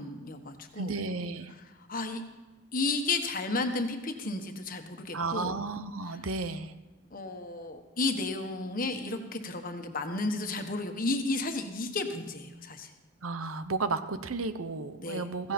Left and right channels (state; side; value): normal; both; correlation 0.26